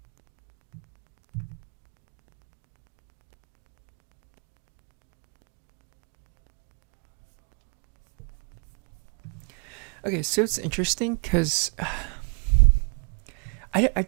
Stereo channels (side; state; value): left; quieter; 38.3 dB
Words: Okay, so it's interesting because I